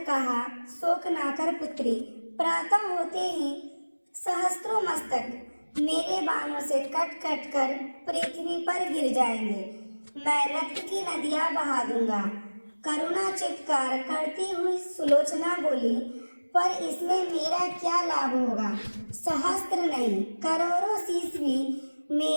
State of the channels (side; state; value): both; inverted; correlation -1.00